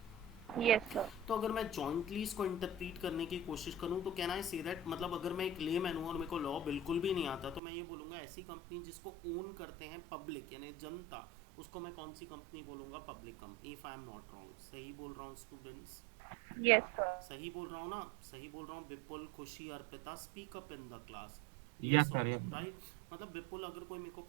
Yes, sir. तो अगर मैं जॉइंटली इसको इंटरप्रीट करने की कोशिश करूं तो कैन आई से दैट, मतलब अगर मैं एक लेमैन हूं और मेरे को लॉ बिल्कुल भी नहीं आता, तो मैं ये बोलूंगा ऐसी कंपनी जिसको ओन करते हैं पब्लिक यानी जनता, उसको मैं कौन सी कंपनी बोलूंगा? Public company. If I am not wrong, सही बोल रहा हूँ स्टूडेंट्स? Yes, sir. सही बोल रहा हूँ ना? सही बोल रहा हूँ? विपुल, खुशी, Arpita, speak up in the class. Yes, yes sir, और नो? yes. राइट मतलब विपुल, अगर कोई मेरे को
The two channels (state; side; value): drops out; left; at 7.6 s